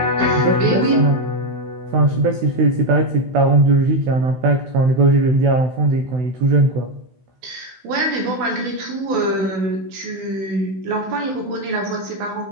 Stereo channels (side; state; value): left; late; 16 ms